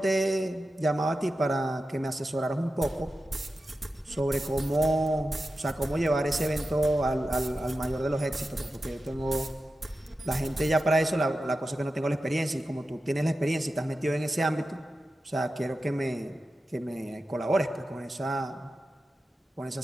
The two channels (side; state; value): both; normal; correlation 0.92